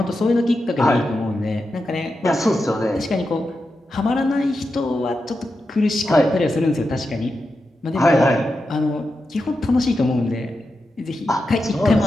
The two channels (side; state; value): both; normal; correlation 0.89